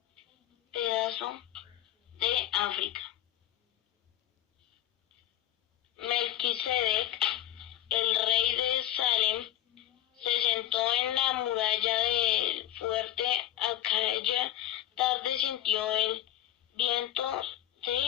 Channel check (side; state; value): right; quieter; 13.2 dB